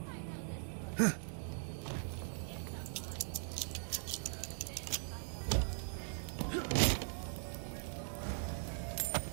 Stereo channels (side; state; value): left; silent; digital silence